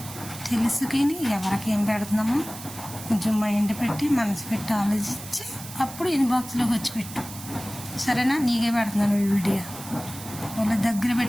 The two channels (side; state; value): right; noise; hiss, 13 dB below the sound